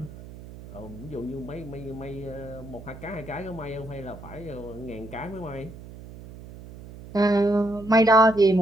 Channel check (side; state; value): right; noise; hum, 15 dB below the sound